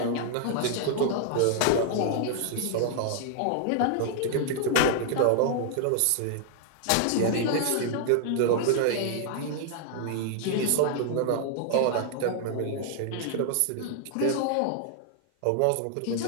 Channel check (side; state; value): both; different; correlation 0.00